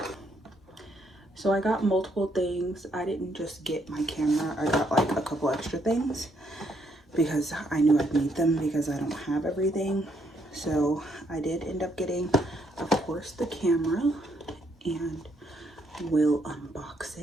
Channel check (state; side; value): normal; both; correlation 0.73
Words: So I got multiple things. I didn't just get my camera, I got like a couple extra things because I knew I'd need them because I don't have everything. So I did end up getting, of course, the camera, and we'll unbox